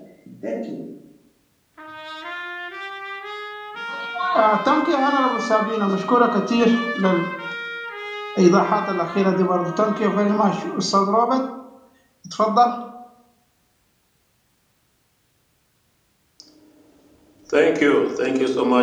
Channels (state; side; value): identical; both; correlation 1.00